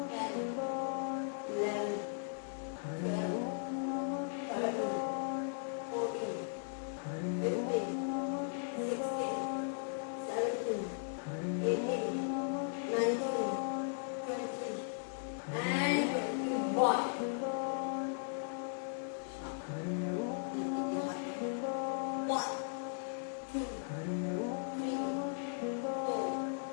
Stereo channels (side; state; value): right; silent; digital silence